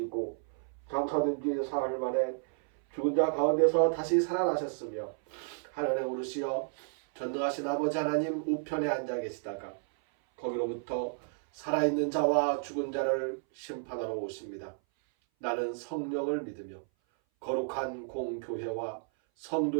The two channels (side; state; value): left; silent; 56 dB below the other